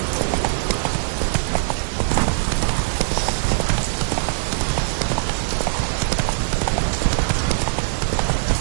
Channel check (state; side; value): silent; left; 65 dB below the other